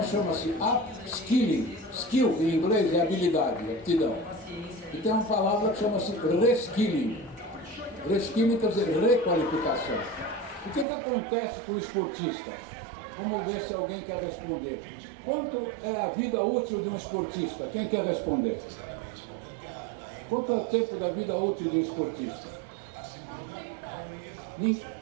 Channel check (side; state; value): left; drops out; at 10.9 s